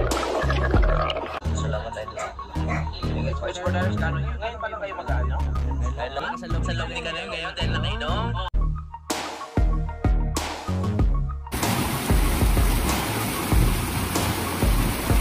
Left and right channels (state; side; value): identical; both; correlation 1.00